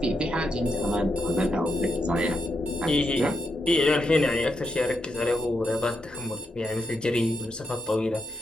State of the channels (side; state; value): both; normal; correlation 0.82